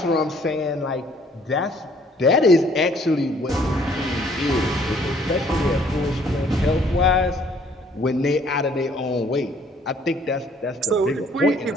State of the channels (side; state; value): both; normal; correlation 0.60